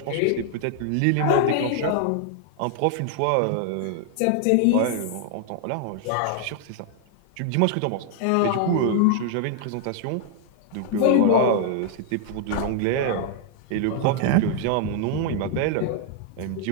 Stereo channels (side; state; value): both; different; correlation 0.00